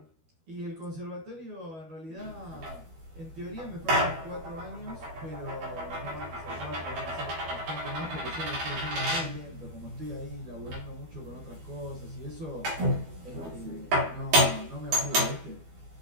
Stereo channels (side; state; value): left; late; 12 ms